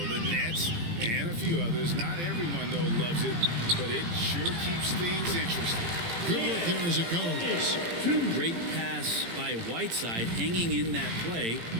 The Nets and a few others. Not everyone, though, loves it, but it sure keeps things interesting. Good work there as it goes. A great pass by Whiteside, hanging in that play.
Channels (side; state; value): left; late; 18 ms